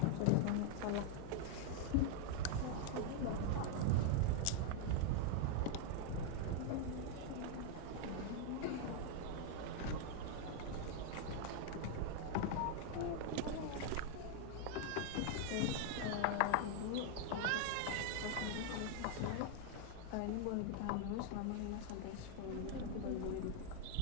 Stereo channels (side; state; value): both; different; correlation 0.00